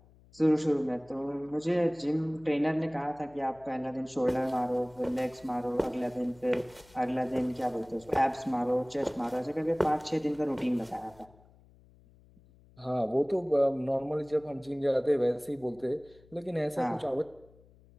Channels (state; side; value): noise; left; hum, 27 dB below the sound